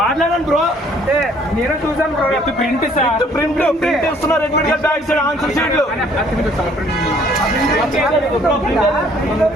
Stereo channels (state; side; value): normal; both; correlation 0.60